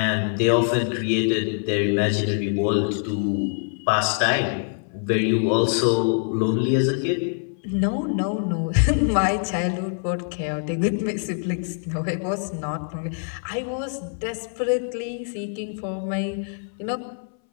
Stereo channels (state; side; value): silent; right; 62 dB below the other